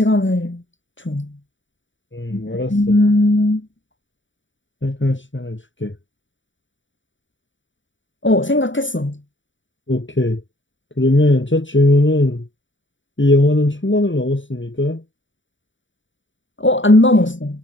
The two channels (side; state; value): right; late; 0.55 ms